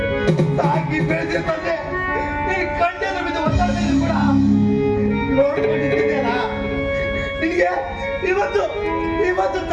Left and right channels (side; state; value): both; identical; correlation 1.00